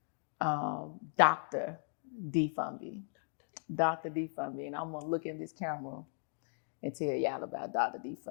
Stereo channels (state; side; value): silent; right; digital silence